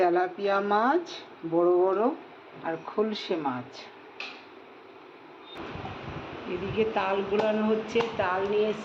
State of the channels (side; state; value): both; identical; correlation 1.00